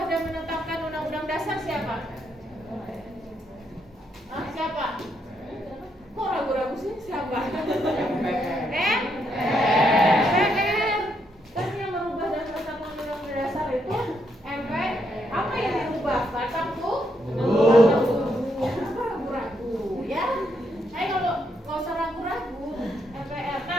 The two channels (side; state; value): both; normal; correlation 0.77